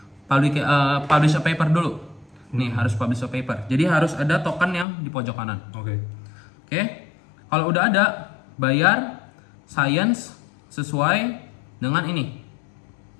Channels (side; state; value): right; drops out; at 4.9 s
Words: publish a paper dulu. Nih harus publish a paper. Jadi harus ada token yang di pojok kanan. Oke. Oke. Kalau udah ada, bayar science sesuai dengan ini.